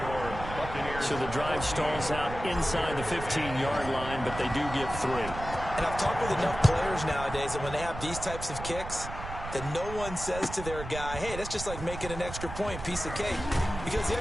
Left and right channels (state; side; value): noise; right; rumble, 9 dB below the sound